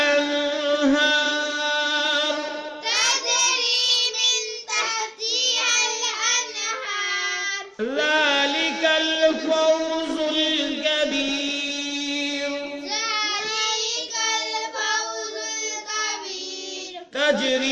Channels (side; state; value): both; identical; correlation 1.00